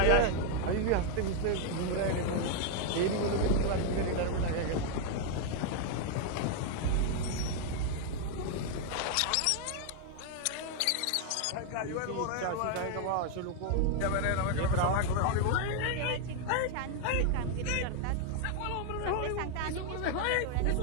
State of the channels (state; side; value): different; both; correlation 0.00